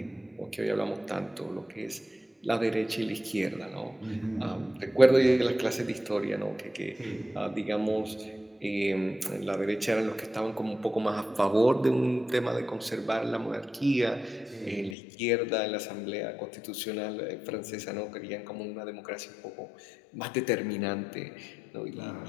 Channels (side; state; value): right; drops out; at 15.0 s